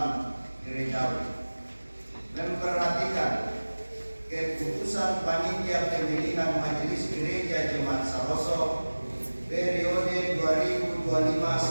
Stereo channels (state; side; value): inverted; both; correlation -1.00